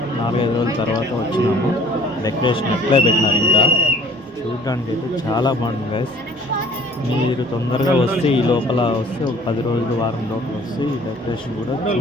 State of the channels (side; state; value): both; normal; correlation 0.53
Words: 4-5 రోజుల తర్వాత వచ్చినాము. డెకరేషన్ అట్లే పెట్టినారు. ఇంకా చూడడానికి అయితే చాలా బాగుంటుంది గైస్. మీరు తొందరగా వస్తే ఈ లోపల వస్తే ఒక 10 రోజులు వారం లోపల వస్తే ఈ డెకరేషన్ కూడా